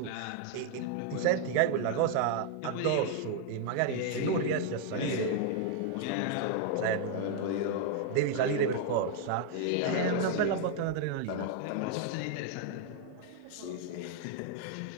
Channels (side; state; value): both; different; correlation 0.00